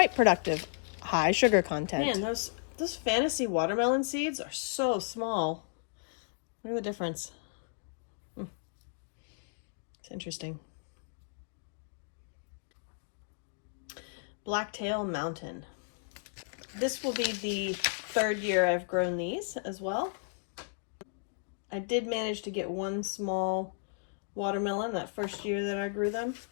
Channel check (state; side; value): silent; right; digital silence